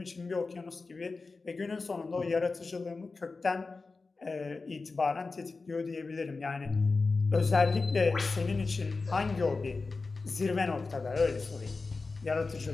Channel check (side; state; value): right; quieter; 4.0 dB